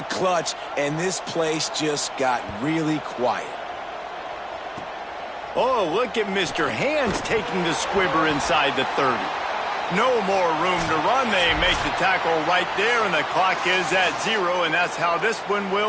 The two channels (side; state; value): both; identical; correlation 1.00